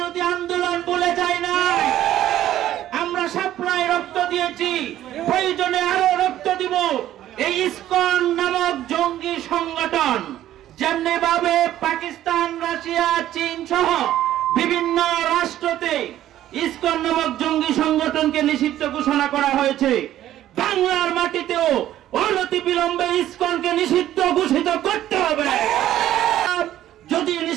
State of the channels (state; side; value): quieter; left; 12.8 dB